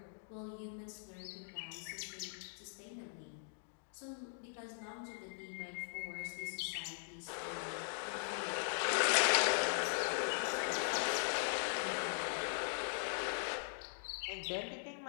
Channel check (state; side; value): silent; right; digital silence